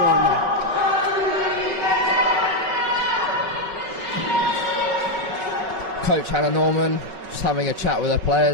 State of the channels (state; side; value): late; left; 5.3 ms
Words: line there. Coach Hannah Norman just having a chat with their